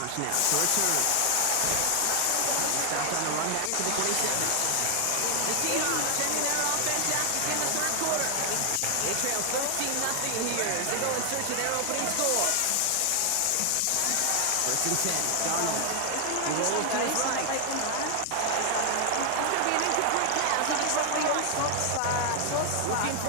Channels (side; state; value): both; different; correlation 0.00